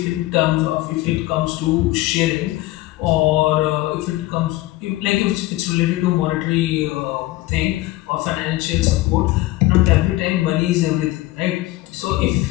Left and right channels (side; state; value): right; quieter; 18.0 dB